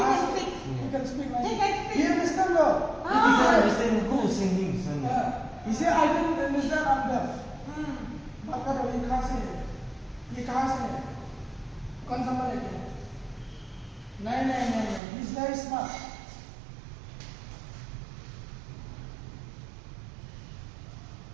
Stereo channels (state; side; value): drops out; left; at 15.0 s